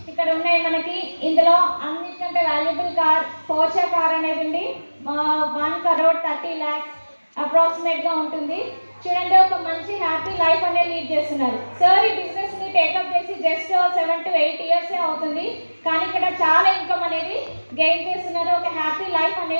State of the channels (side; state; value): both; inverted; correlation -1.00